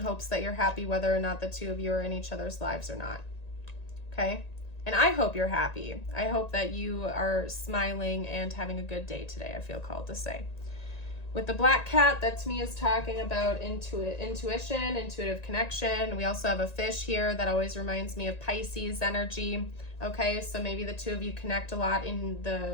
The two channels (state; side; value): late; right; 1.9 ms